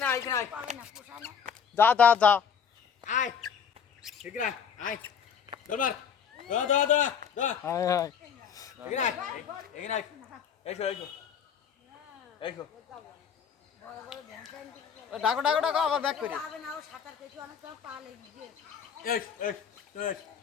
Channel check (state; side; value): quieter; right; 7.4 dB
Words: আয় এখানে আয় যা যা যা আয় এখানে আয় আয় দরবার দা দা দা দা হায় হায় এখানে আয় এখানে আয় এসো এসো এসো ডাকো ডাকো ডাকো আবার ব্যাক করি এস এস এস